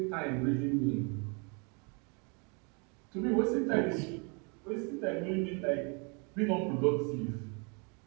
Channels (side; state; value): left; quieter; 34.4 dB